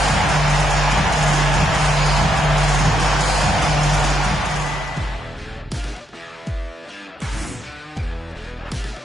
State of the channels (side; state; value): both; normal; correlation 0.79